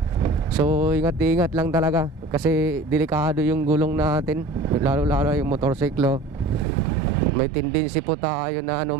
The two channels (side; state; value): left; drops out; at 6.7 s